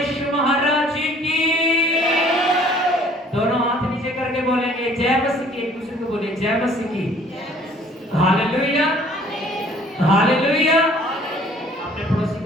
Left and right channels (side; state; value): both; normal; correlation 0.55